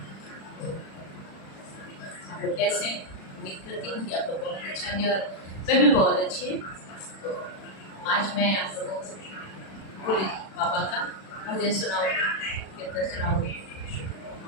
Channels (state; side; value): late; right; 36 ms